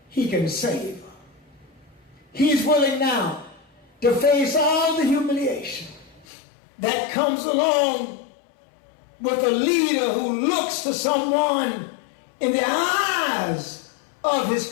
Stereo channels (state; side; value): drops out; right; at 6.2 s